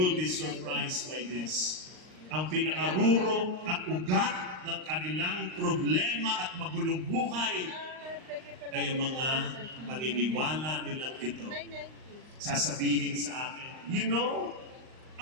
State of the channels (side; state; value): left; late; 39 ms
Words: be surprised by this. Ang pinaruro at ugat ng kanilang problema at magulong buhay ay ang mga paniniwala nilang ito. Sasabihin sa akin, you know,